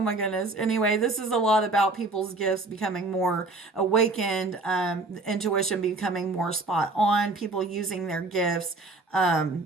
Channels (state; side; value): quieter; left; 3.2 dB